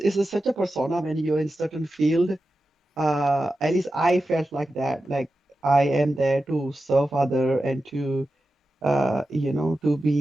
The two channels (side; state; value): both; normal; correlation 0.92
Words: such a persona when you're in certain field. At least I felt like that. Like I am there to serve other and to